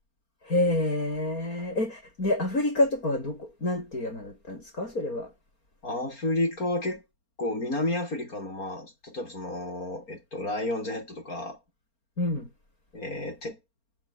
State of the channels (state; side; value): late; right; 4.3 ms